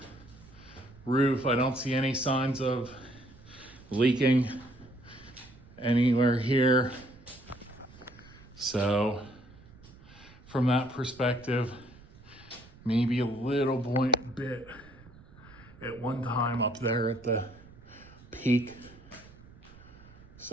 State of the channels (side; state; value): right; noise; rumble, 22 dB below the sound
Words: roof, I don't see any signs of leaking anywhere here. So from that perspective, maybe a little bit at one time up there at the peak.